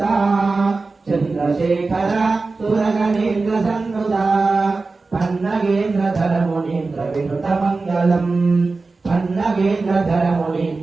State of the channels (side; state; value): left; quieter; 3.8 dB